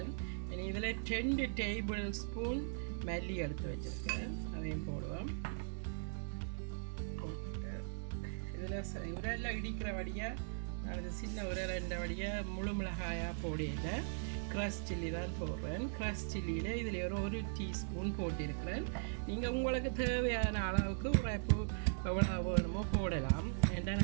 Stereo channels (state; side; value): silent; left; digital silence